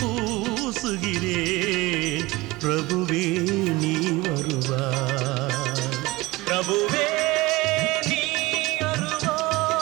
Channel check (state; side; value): quieter; left; 20.9 dB